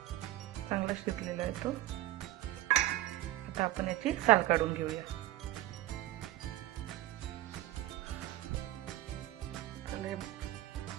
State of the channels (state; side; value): quieter; left; 15.2 dB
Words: चांगला शिजलेला आहे तो। आता आपण याची साल काढून घेऊया।